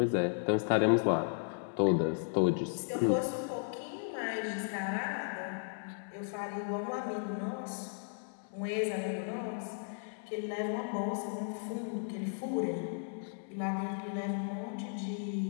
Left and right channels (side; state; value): right; silent; 54 dB below the other